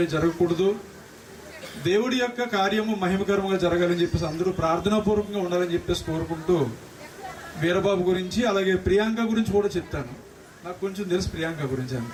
జరగకూడదు, దేవుడి యొక్క కార్యము మహిమకరంగా జరగాలని చెప్పేసి అందరూ ప్రార్థనాపూర్వకంగా ఉండాలని చెప్పేసి కోరుకుంటూ వీరబాబు గురించి అలాగే ప్రియాంక గురించి కూడా చెప్తాను. నాకు కొంచెం తెలుసు ప్రియాంక గురించి.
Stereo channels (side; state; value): both; identical; correlation 1.00